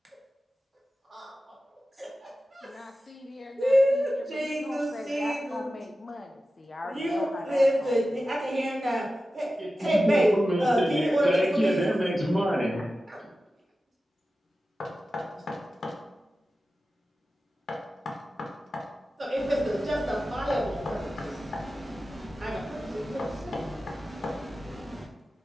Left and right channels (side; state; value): both; normal; correlation 0.94